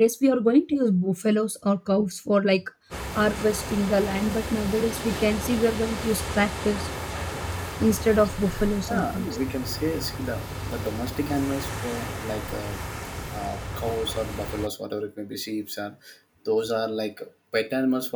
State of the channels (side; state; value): both; identical; correlation 1.00